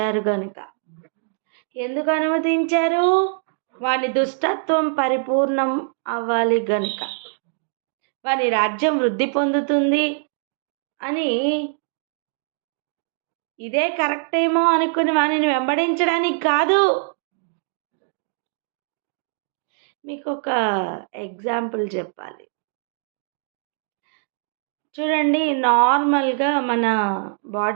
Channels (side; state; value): left; silent; digital silence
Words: గనుక. ఎందుకు అనుమతించారు? వాని దుష్టత్వం పరిపూర్ణం అవ్వాలి గనుక, వాని రాజ్యం వృద్ధి పొందుతుంది అని, ఇదే కరెక్ట్ ఏమో అనుకుని వానిని వెంబడించడానికి కాదు. మీకు ఒక ఎగ్జాంపుల్ చెప్పాలి. చూడండి, నార్మల్గా మన